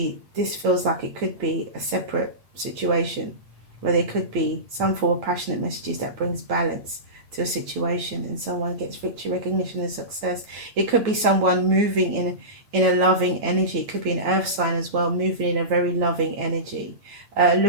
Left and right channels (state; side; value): late; left; 9.0 ms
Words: this feels like it could be a separate situation where there could be some form of passionate messages that brings balance to a situation and someone gets victory, recognition, and success. It could be someone moving in a loving energy. It could be an earth sign as well, moving in a very loving energy,